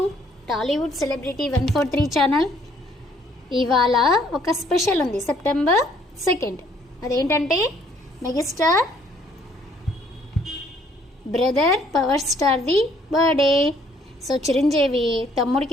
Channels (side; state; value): both; normal; correlation 0.64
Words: Tollywood celebrity 143 channel. ఇవాళ ఒక స్పెషల్ ఉంది, సెప్టెంబర్ 2. అదేంటంటే మెగాస్టార్ బ్రదర్ పవర్ స్టార్ది బర్త్డే. సో చిరంజీవి